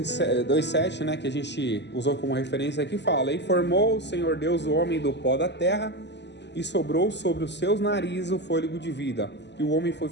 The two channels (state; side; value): late; right; 0.51 ms